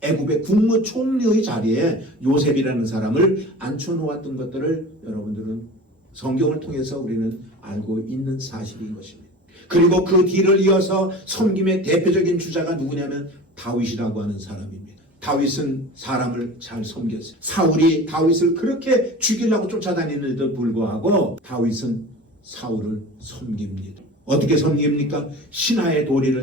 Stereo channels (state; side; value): normal; both; correlation 0.36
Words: 애굽의 국무총리의 자리에 요셉이라는 사람을 앉혀놓았던 것들을 여러분들은 성경을 통해서 우리는 알고 있는 사실인 것입니다. 그리고 그 뒤를 이어서 섬김의 대표적인 주자가 누구냐면 다윗이라고 하는 사람입니다. 다윗은 사람을 잘 섬겼어요. 사울이 다윗을 그렇게 죽이려고 쫓아다니는데도 불구하고 다윗은 사울을 섬깁니다. 어떻게 섬깁니까? 신하의